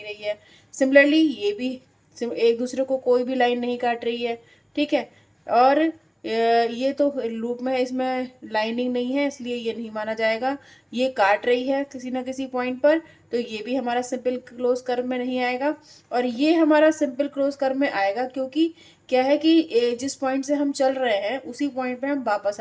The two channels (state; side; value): identical; both; correlation 1.00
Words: रही है। सिमिलरली ये भी एक दूसरे को कोई भी लाइन नहीं काट रही है। ठीक है, और ये तो लूप में है, इसमें लाइनिंग नहीं है इसलिए ये नहीं माना जाएगा। ये काट रही है किसी ना किसी पॉइंट पर, तो ये भी हमारा सिंपल क्लोज कर्व में नहीं आएगा। और ये हमारा सिंपल क्लोज कर्व में आएगा क्योंकि क्या है कि जिस पॉइंट से हम चल रहे हैं उसी पॉइंट पे हम वापस